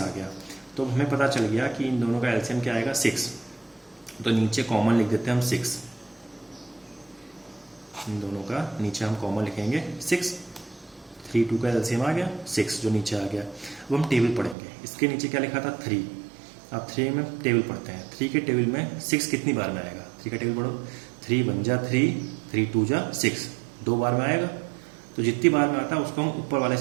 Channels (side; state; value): left; drops out; at 14.6 s